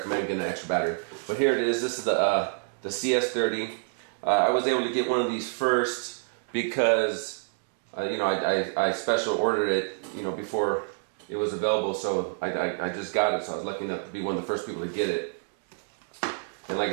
getting an extra battery. But here it is. This is the CS30. I was able to get one of these first because I special ordered it before it was available. So I just got it. So I was lucky enough to be one of the first people to get it. And like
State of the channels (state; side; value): silent; left; digital silence